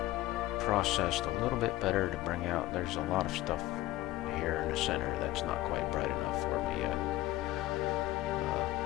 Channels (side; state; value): right; quieter; 16.9 dB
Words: processed a little bit better to bring out. There's a lot of stuff here in the center that's not quite bright enough for me yet.